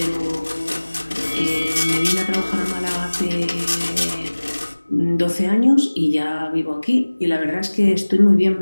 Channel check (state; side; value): inverted; both; correlation -1.00